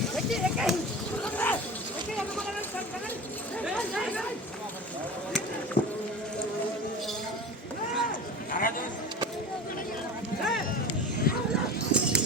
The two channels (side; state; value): both; normal; correlation 0.33